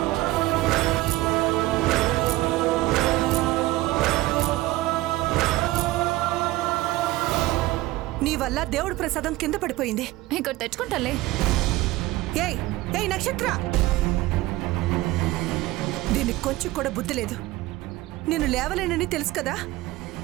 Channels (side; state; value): left; quieter; 18.1 dB